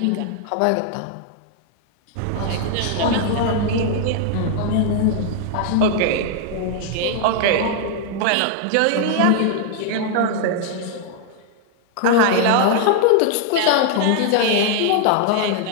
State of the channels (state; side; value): different; both; correlation 0.00